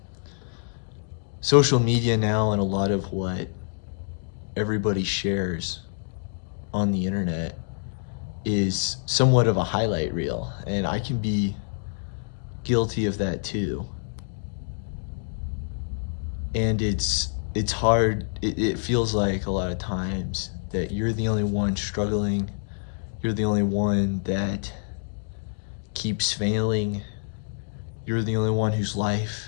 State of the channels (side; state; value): right; silent; digital silence